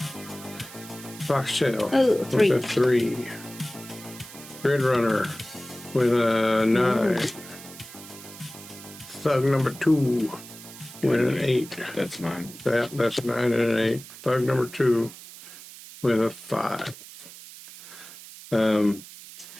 Foxtail. Oh, 3. With a 3. Gridrunner with a 9. Thug number 2 with an 8. That's mine. That's a 9 and an 8. Thug number 2 with a 5.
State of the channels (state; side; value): noise; right; hiss, 16 dB below the sound